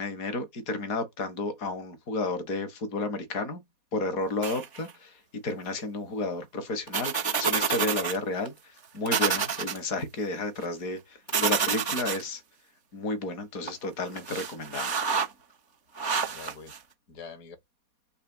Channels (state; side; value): late; right; 4.2 ms